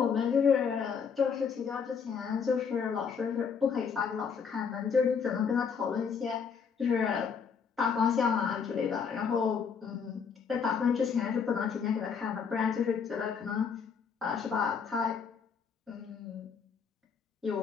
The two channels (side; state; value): right; quieter; 6.3 dB